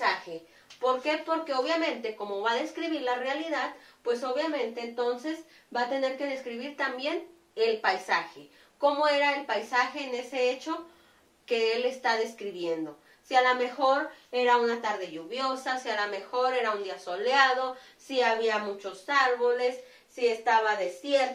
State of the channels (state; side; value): identical; both; correlation 1.00